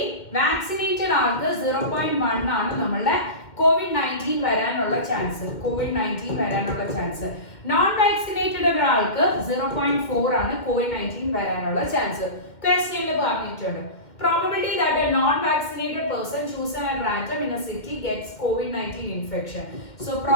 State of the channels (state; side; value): late; right; 2.1 ms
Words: വാക്സിനേറ്റഡ് ആൾക്ക് 0.1 ആണ് നമ്മളുടെ COVID-19 വരാനുള്ള ചാൻസ്. നോൺ വാക്സിനേറ്റഡ് ഒരാൾക്ക് 0.4 ആണ് COVID-19 വരാനുള്ള ചാൻസ്. ക്വസ്റ്റ്യനിൽ പറഞ്ഞിട്ടുണ്ട്. Probability that a non-vaccinated person chosen at random in a city gets COVID-19 infection. So